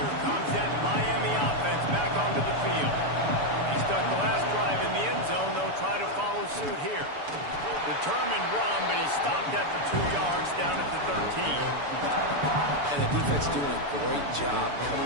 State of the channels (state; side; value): late; left; 6.9 ms